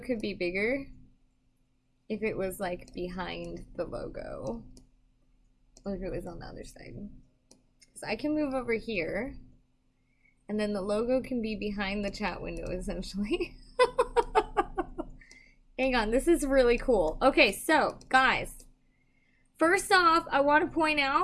be bigger if it was like behind the logo, or if it was on the other side. So I can move over here, and then the logo can be behind the chat window, essentially. Hang on, this is really cool. Okay, so guys, first off, I want to point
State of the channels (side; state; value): both; identical; correlation 1.00